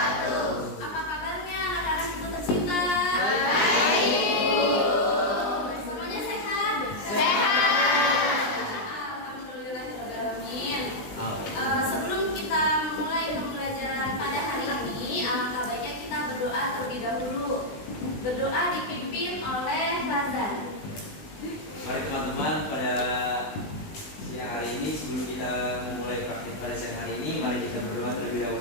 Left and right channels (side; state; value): right; late; 20 ms